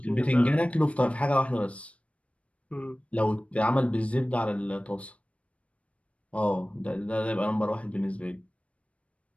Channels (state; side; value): late; right; 0.063 ms